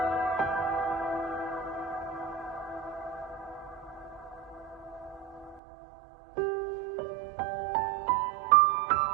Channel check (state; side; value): drops out; left; at 5.6 s